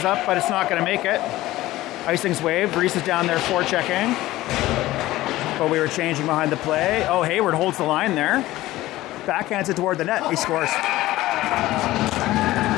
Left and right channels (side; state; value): right; quieter; 16.7 dB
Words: up, but it's not going to make it. Icing's waved. Reese is down there forechecking. But we were changing behind the play. Oh, Hayward holds the line there. Backhands it toward the net. He scores.